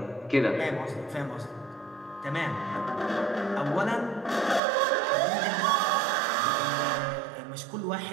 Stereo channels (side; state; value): left; drops out; at 4.6 s